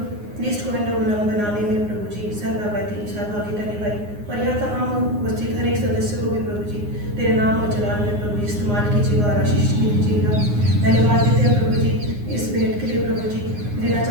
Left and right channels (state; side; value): late; left; 9.7 ms